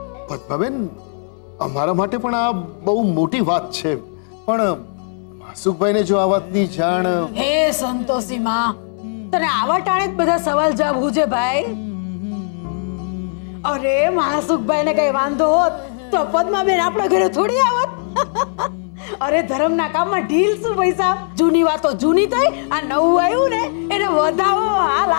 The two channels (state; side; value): silent; right; 66 dB below the other